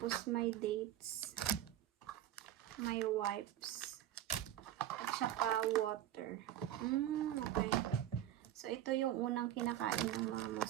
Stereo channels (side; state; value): left; quieter; 12.2 dB